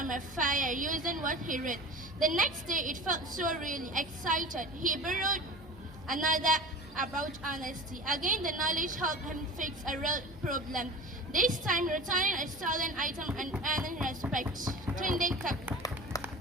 a fire using what he read. The next day it felt so really excited. He borrowed another about honesty. Again, the knowledge helped him fix a real problem. This time, returning a stolen item and earning respect. Tunde kept.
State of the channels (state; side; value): normal; both; correlation 0.36